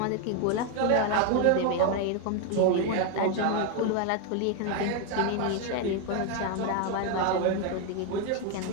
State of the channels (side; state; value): both; different; correlation 0.01